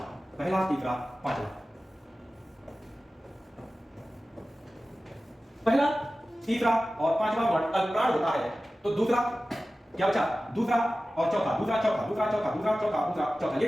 पहला, तीसरा, पांचवा, पहला, तीसरा और पांचवा वर्ण अल्पप्राण होता है। तो दूसरा क्या बचा? दूसरा और चौथा, दूसरा चौथा, दूसरा चौथा, दूसरा चौथा, दूसरा चौथा, ये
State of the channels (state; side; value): normal; both; correlation 0.95